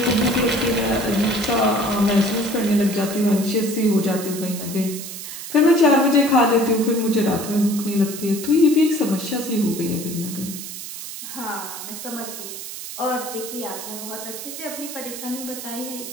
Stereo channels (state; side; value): noise; right; hiss, 9 dB below the sound